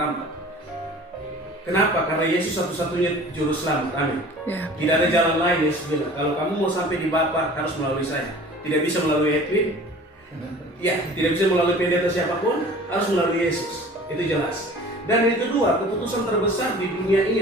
Kenapa? Karena Yesus satu-satunya Juru Selamat. Amin. Ya. Tidak ada jalan lain. Yesus bilang, kalau kamu mau sampai di Bapa harus melalui saya. Tidak bisa melalui Edwin. Ya, tidak bisa melalui pendeta siapapun, harus melalui Yesus. Itu jelas. Dan yang kedua, keputusan terbesar di dunia ini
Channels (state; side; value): normal; both; correlation 0.44